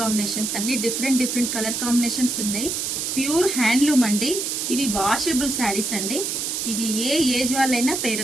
కాంబినేషన్స్ అన్ని డిఫరెంట్ కలర్ కాంబినేషన్స్ ఉన్నాయి. ప్యూర్ హ్యాండ్లూమ్ అండి. ఇవి వాషబుల్ శారీస్ అండి. ఇది ఏ ఏజ్ వాళ్ళైనా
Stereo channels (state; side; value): noise; right; hiss, 2 dB below the sound